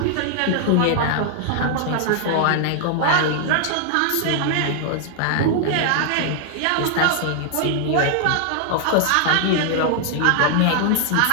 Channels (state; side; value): different; both; correlation 0.00